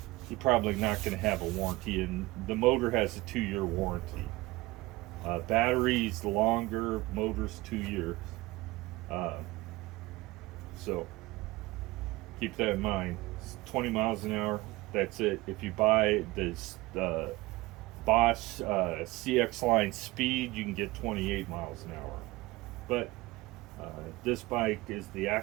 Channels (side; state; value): left; quieter; 20.5 dB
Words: you're probably not going to have a warranty, and the motor has a 2-year warranty. Batteries longer, motors 2 years. Uh, so keep that in mind. It's 20 miles an hour. That's it. If you buy this Bosch CX line speed, you can get 28 miles an hour. But this bike is the